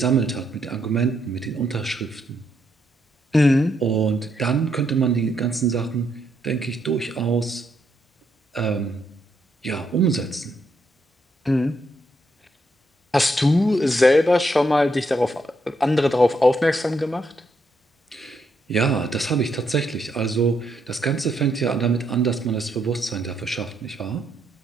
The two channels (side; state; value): both; normal; correlation 0.77